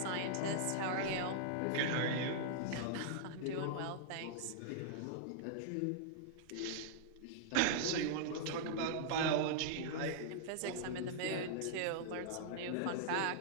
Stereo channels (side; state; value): both; different; correlation -0.01